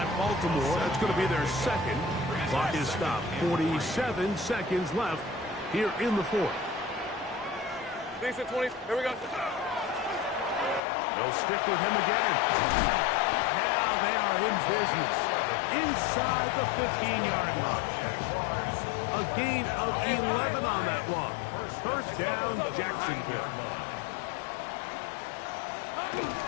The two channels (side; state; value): right; drops out; at 10.8 s